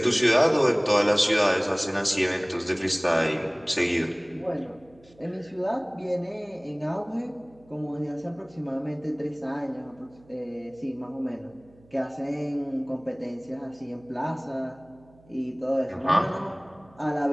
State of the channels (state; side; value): noise; right; hum, 27 dB below the sound